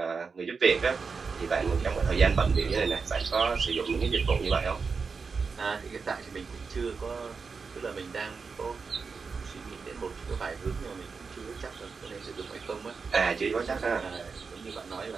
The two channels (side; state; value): left; quieter; 5.0 dB